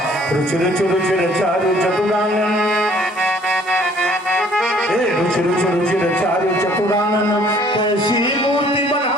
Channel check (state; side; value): normal; both; correlation 0.58